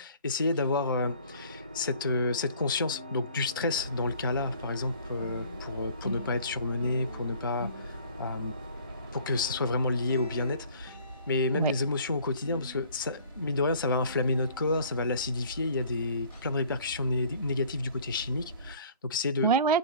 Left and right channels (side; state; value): both; inverted; correlation -0.52